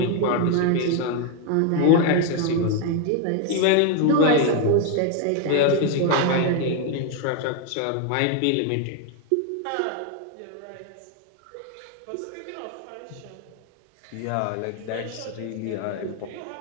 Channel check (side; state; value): both; different; correlation 0.01